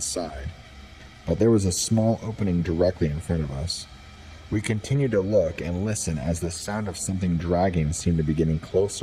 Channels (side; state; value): both; identical; correlation 1.00